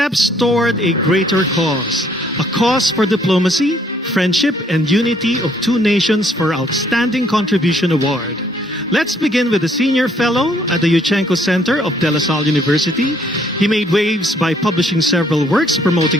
toward a greater cause. A cause for diplomacy, friendship, and unity of two nations for Outstanding Contribution Award. Let's begin with the Senior Fellow at the Yuchенko Center of De La Salle University. He made waves by publishing several works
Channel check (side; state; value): both; normal; correlation 0.65